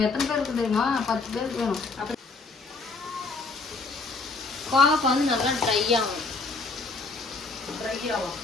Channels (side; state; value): right; quieter; 3.9 dB